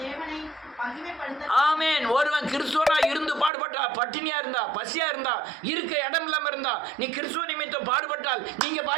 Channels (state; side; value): drops out; left; at 3.5 s